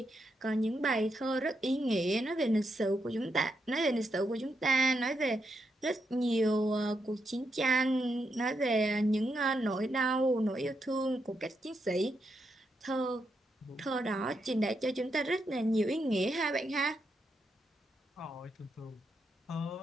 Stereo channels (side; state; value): both; normal; correlation 0.82